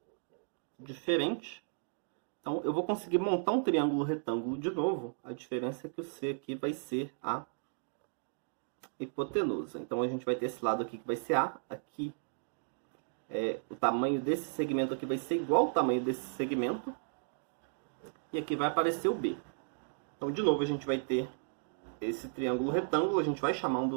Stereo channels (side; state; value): left; silent; digital silence